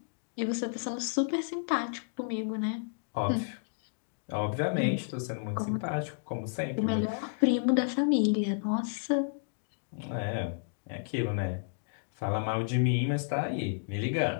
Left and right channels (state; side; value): silent; right; digital silence